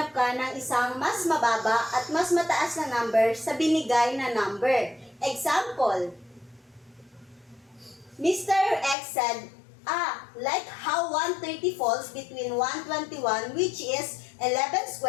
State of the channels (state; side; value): drops out; right; at 9.0 s